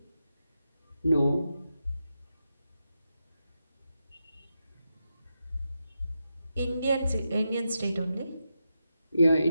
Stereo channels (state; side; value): inverted; both; correlation -0.87